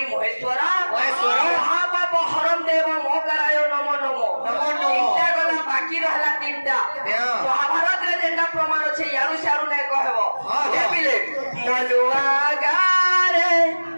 महेश्वर महापाप हरम देव मोकराय नमो नमो तीनटा गला बाकी रहला तीनटा महाभारत रे जेंटा प्रमाण छै यारु सारु नै कहबो हे पिले मनुआ गारे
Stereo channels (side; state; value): both; inverted; correlation -1.00